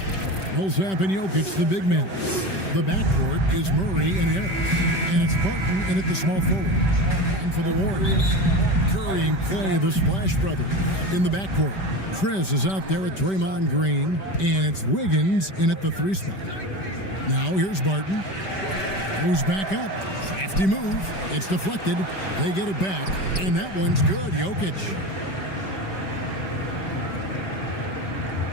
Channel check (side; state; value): right; late; 5.2 ms